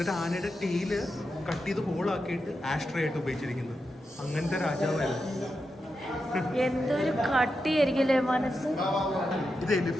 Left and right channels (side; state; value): both; normal; correlation 0.88